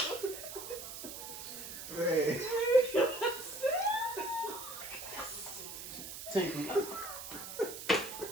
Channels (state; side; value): noise; right; hiss, 9 dB below the sound